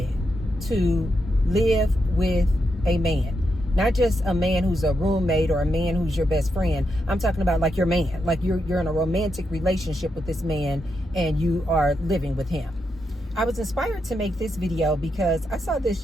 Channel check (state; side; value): normal; both; correlation 0.83